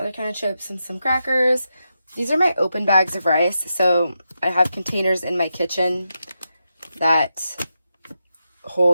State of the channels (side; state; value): both; inverted; correlation -0.87